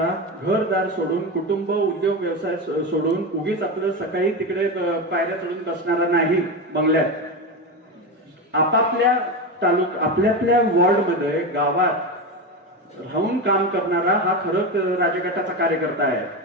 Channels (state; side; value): normal; both; correlation 0.17